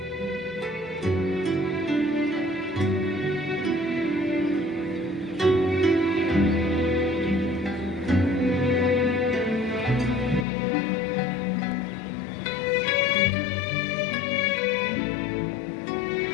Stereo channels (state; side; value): drops out; right; at 10.5 s